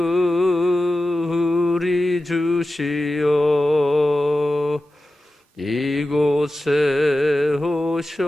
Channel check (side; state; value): both; normal; correlation 0.93